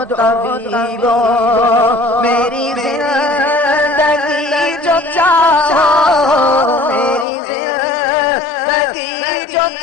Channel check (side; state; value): right; drops out; at 7.2 s